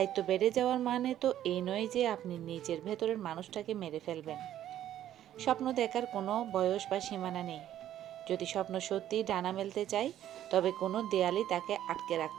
বেড়ে যাওয়ার মানে তো এই নয় যে আপনি নিজের ভেতরের মানুষটাকে মেরে ফেলবেন। স্বপ্ন দেখার কোনো বয়স বা সীমানা নেই। যদি স্বপ্ন সত্যিই ডানা মেলতে চায়, তবে কোনো দেয়ালই তাকে আটকে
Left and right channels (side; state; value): left; quieter; 11.8 dB